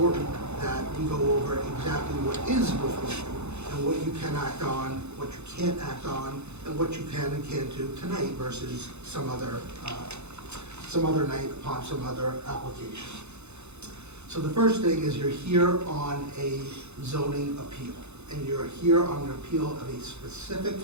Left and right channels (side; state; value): left; late; 0.81 ms